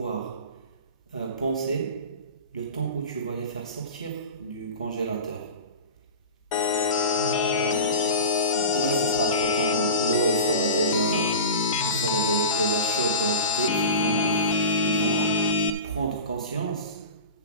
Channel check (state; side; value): inverted; both; correlation -0.30